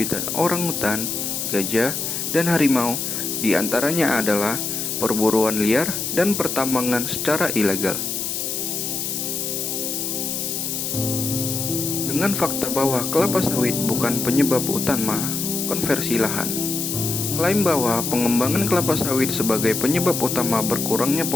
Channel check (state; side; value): noise; left; hiss, 3 dB below the sound